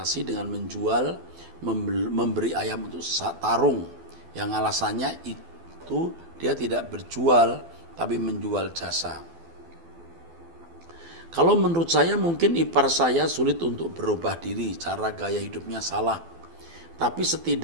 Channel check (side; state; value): left; late; 12 ms